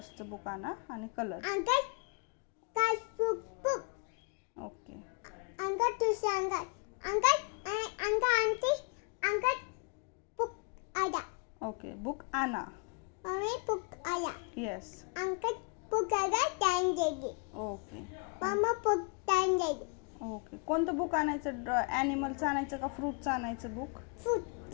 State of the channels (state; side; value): quieter; right; 37.6 dB